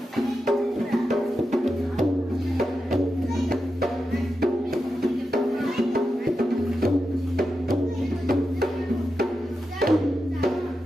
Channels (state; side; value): normal; both; correlation 0.89